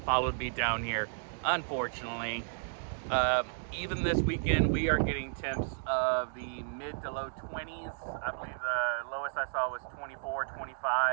me down here, unfortunately. Even this weekend, we are getting temps of the mid to low 20s. I believe the lowest I saw was 24,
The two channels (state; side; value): silent; left; digital silence